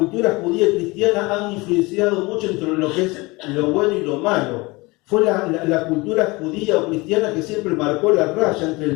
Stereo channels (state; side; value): quieter; right; 23.9 dB